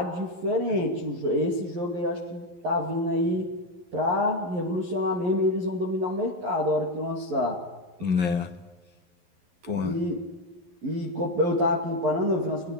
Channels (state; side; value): late; left; 11 ms